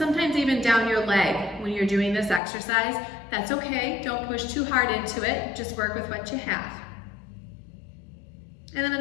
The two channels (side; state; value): right; drops out; at 2.4 s